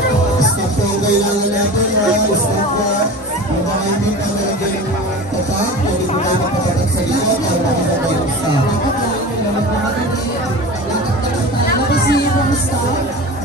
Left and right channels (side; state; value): both; normal; correlation 0.33